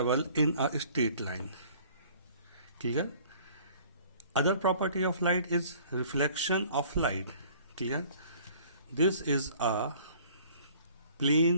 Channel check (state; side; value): inverted; both; correlation -0.53